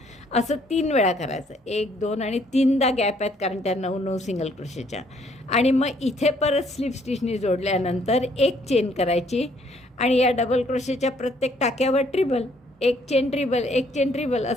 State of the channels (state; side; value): normal; both; correlation 0.65